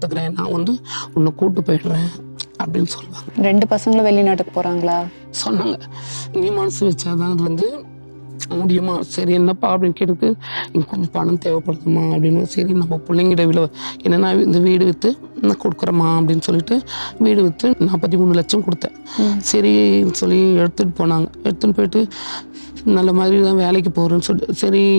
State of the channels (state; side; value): inverted; both; correlation -1.00